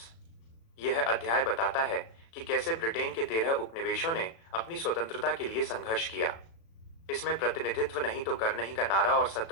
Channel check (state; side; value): late; right; 36 ms